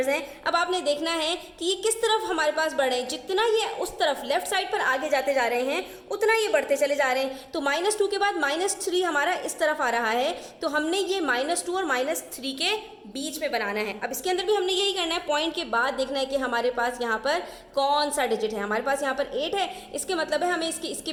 हैं, अब आपने देखना है कि ये किस तरफ हमारे पास बढ़े। जितना ये उस तरफ लेफ्ट साइड पर आगे जाते जा रहे हैं उतना ये बढ़ते चले जा रहे हैं। तो -2 के बाद -3 हमारा इस तरफ आ रहा है, तो हमने ये -2 और -3 के बीच में बनाना है। अब इसके अंदर भी हमने यही करना है, पॉइंट के बाद देखना है कि हमारे पास यहाँ पर कौन सा डिजिट है। हमारे पास यहाँ पर 8 है, इसके मतलब है हमें इसके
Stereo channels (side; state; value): both; identical; correlation 1.00